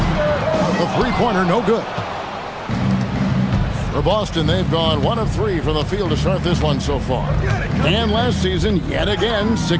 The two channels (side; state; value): both; identical; correlation 1.00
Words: The three-pointer no good. For Boston, they've gone 1 of 3 from the field to start this one so far. And last season, yet again,